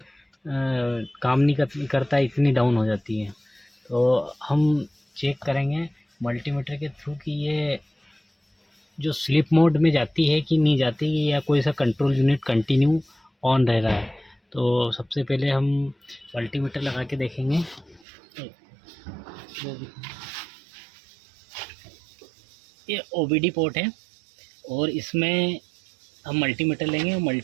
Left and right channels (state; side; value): drops out; left; at 18.1 s